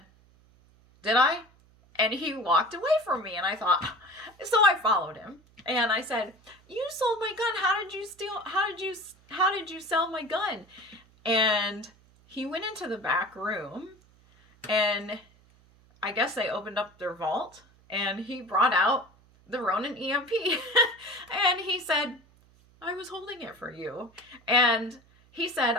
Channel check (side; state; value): right; noise; hum, 29 dB below the sound